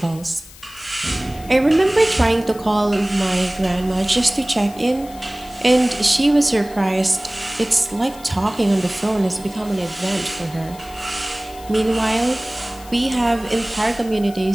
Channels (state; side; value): noise; left; hiss, 20 dB below the sound